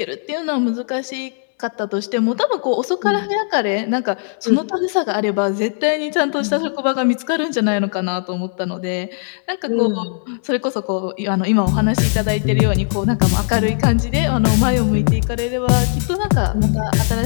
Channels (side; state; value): right; silent; 67 dB below the other